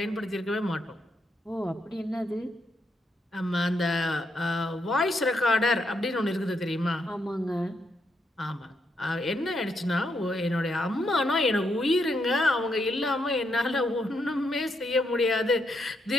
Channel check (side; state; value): both; normal; correlation 0.79